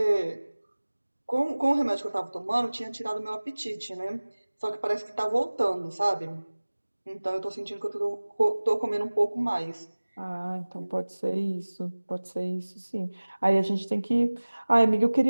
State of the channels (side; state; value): both; inverted; correlation -1.00